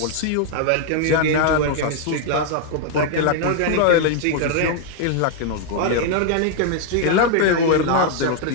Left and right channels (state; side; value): different; both; correlation 0.00